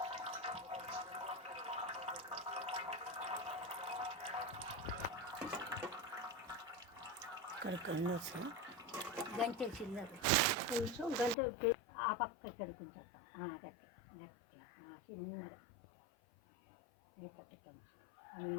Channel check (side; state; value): right; drops out; at 11.4 s